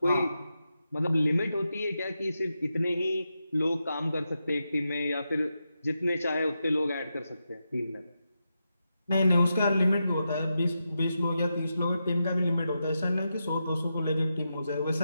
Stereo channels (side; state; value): both; inverted; correlation -0.88